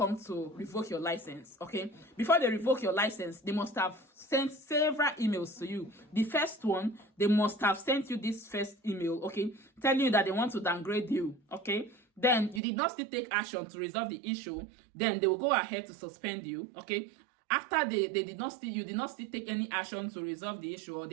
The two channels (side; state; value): left; drops out; at 12.6 s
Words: to revoke your license, okay? Before they revoke your license, they must have sent several emails to you. The first one, they must have sent you this first email, okay, telling you that they want to downgrade you, okay? Then you did not still take action to resolve the issue. Then they will go ahead to suspend you, okay? After you did not still take any action to resolve the issue, or